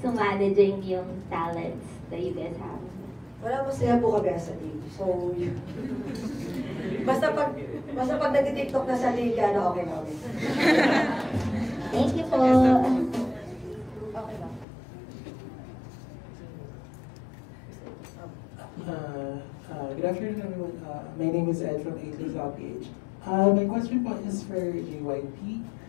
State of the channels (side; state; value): right; drops out; at 14.7 s